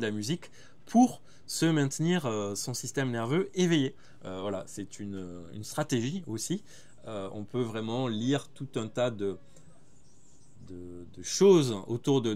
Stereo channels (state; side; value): identical; both; correlation 1.00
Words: la musique pour se maintenir son système nerveux éveillé. Voilà, c'est une stratégie aussi. On peut vraiment lire tout un tas de choses autour de